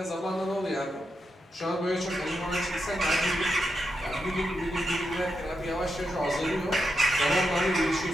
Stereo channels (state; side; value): normal; both; correlation 0.86